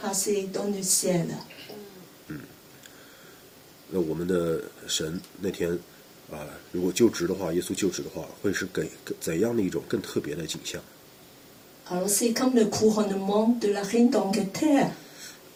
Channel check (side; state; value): both; identical; correlation 1.00